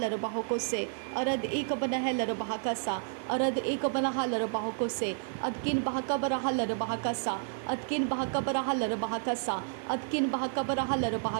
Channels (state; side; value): silent; left; 57 dB below the other